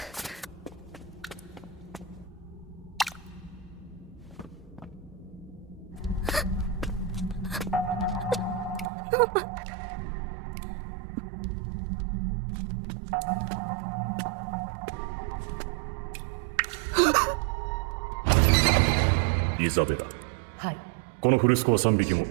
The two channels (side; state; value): left; drops out; at 8.8 s